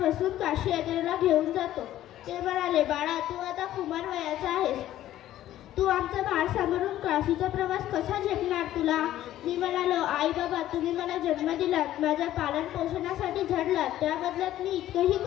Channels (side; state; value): right; quieter; 13.3 dB